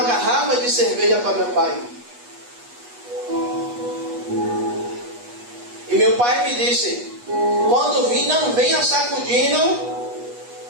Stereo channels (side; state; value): left; late; 8.3 ms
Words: garrafa de cerveja para meu pai. E meu pai me disse, quando vir, não venha sacudindo